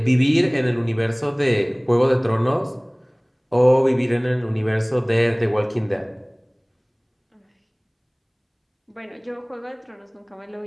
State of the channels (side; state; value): both; identical; correlation 1.00